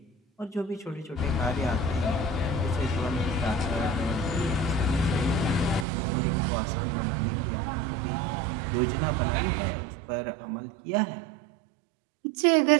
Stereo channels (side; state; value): left; drops out; at 5.9 s